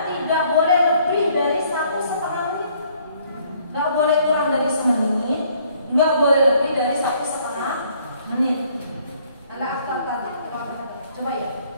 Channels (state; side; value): inverted; both; correlation -0.63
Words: tidak boleh lebih dari 1,5 menit. Nggak boleh kurang dari 1 menit, nggak boleh lebih dari 1,5 menit. Ada akta tadi. Coba ya,